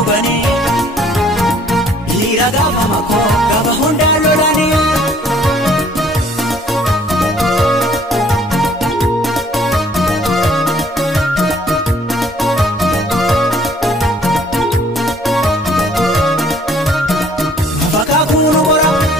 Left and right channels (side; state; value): both; normal; correlation 0.59